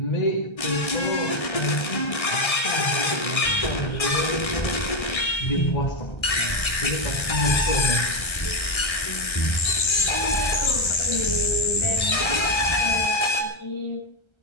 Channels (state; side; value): late; right; 1.3 ms